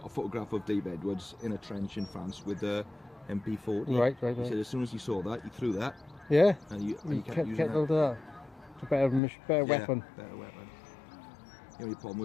a photograph of Dave Edwards in a trench in France with the MP40. Right. He said as soon as he saw that, he threw that. Yeah? And you kept using that. It's a better weapon. Better weapon. The only problem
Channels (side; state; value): right; drops out; at 9.2 s